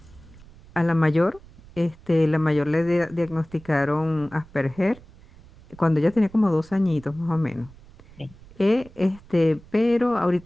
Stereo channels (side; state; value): right; noise; rumble, 23 dB below the sound